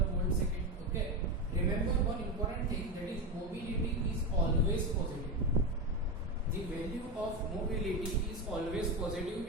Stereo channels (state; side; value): normal; both; correlation 0.16